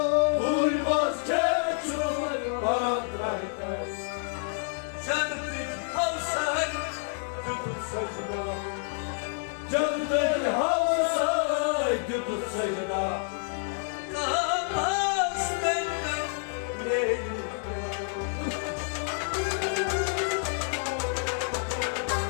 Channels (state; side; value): silent; right; 59 dB below the other